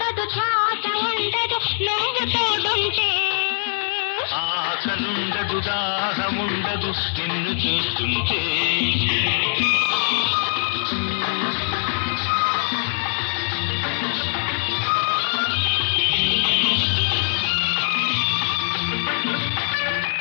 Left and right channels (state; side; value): silent; right; digital silence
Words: శ్వాస ఉండదు నువ్వు తోడుంటే. ఆకలుండదు దాహముండదు నిన్ను చూస్తుంటే.